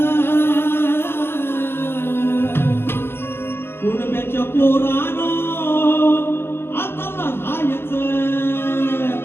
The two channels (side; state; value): right; late; 0.11 ms